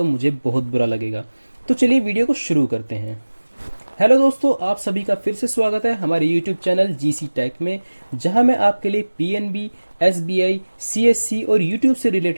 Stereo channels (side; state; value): both; inverted; correlation -1.00